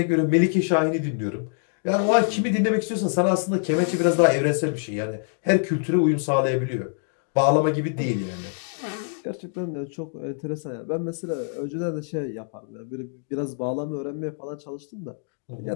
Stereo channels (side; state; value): right; silent; digital silence